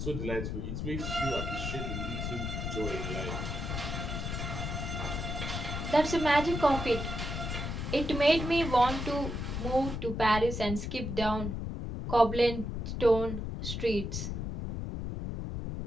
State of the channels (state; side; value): noise; left; rumble, 4 dB below the sound